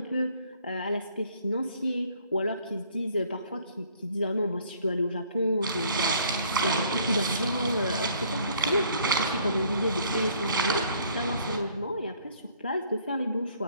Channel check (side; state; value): both; inverted; correlation -0.59